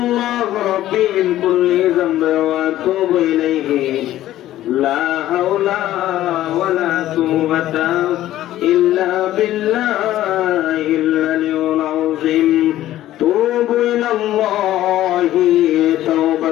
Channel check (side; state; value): right; quieter; 13.8 dB